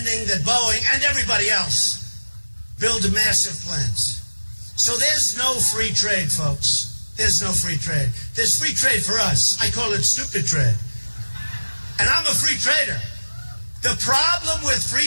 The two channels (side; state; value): both; inverted; correlation -1.00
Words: that Boeing and everybody else build massive plants. So there's no free trade, folks. There's no free trade. There's free trade for us. I call it stupid trade. And I'm a free trader. The problem with